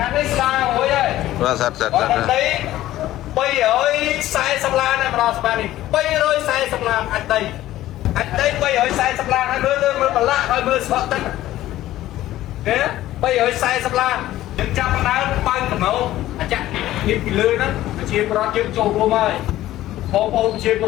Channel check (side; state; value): right; quieter; 14.6 dB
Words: ាងនេះស្ដារមួយហើយបាទសិត340ឡានម្ដងស្មាននេះ340ឡានអាចដី340ឡានហើយមើលប្រឡាក់ហើយមើលស្បកទឹកគេ340ឡានយើងចាប់ដើមបើកកំណោអាចាក់នេះពីលើហ្នឹងជាប្រវត្តិយើងចូលរួមហើយបងប្អូនជាប្រ